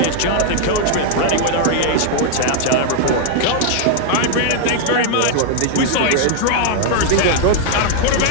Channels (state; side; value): different; both; correlation 0.00